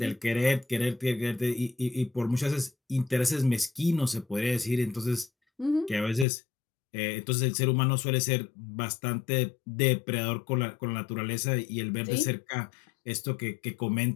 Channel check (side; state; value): right; drops out; at 6.2 s